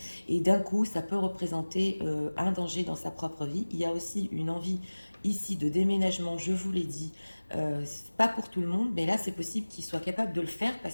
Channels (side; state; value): both; inverted; correlation -1.00